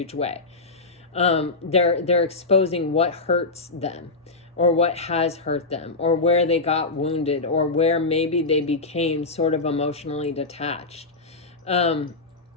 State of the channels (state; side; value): quieter; right; 3.5 dB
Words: way. They're exposing what hurts them, or what has hurt them, or where they got wounded, or where maybe they became sort of emotionally detached.